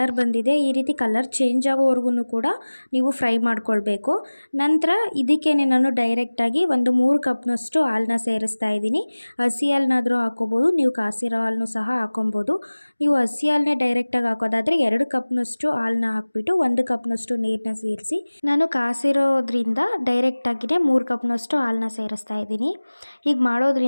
ಬಂದಿದೆ. ಈ ರೀತಿ ಕಲರ್ ಚೇಂಜ್ ಆಗೋವರೆಗೂ ಕೂಡ ನೀವು ಫ್ರೈ ಮಾಡ್ಕೊಳ್ಬೇಕು. ನಂತರ ಇದಕ್ಕೇನೆ ನಾನು ಡೈರೆಕ್ಟಾಗಿ ಒಂದು 3 ಕಪ್ನಷ್ಟು ಹಾಲನ್ನ ಸೇರಿಸ್ತಾ ಇದ್ದೀನಿ. ಹಸಿ ಹಾಲನ್ನಾದರೂ ಹಾಕ್ಕೋಬೋದು, ನೀವು ಕಾಸಿರೋ ಹಾಲನ್ನು ಸಹ ಹಾಕೊಬೋದು. ನೀವು ಹಸಿ ಹಾಲನ್ನೇ ಡೈರೆಕ್ಟಾಗಿ ಹಾಕೋದಾದರೆ 2 ಕಪ್ನಷ್ಟು ಹಾಲನ್ನ ಹಾಕ್ಬಿಟ್ಟು 1 ಕಪ್ನಷ್ಟು ನೀರನ್ನ ಸೇರಿಸಿ, ನಾನು ಕಾಸಿರೋದ್ರಿಂದ ಡೈರೆಕ್ಟಾಗಿಯೇ 3 ಕಪ್ನಷ್ಟು ಹಾಲನ್ನ ಸೇರಿಸ್ತಾ ಇದ್ದೀನಿ. ಹೀಗೆ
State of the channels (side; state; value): both; inverted; correlation -1.00